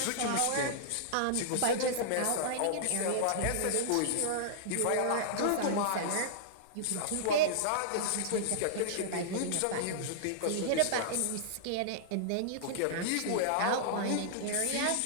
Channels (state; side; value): different; both; correlation -0.02